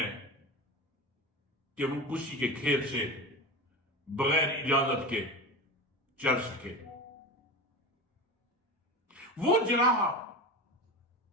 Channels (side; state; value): both; normal; correlation 0.27